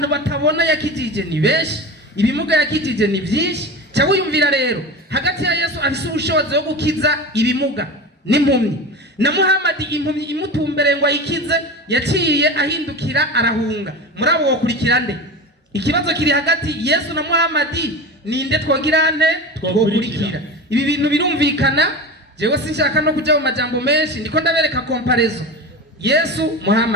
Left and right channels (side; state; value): both; normal; correlation 0.28